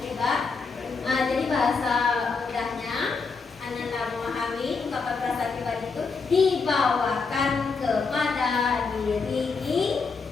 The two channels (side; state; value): right; quieter; 4.7 dB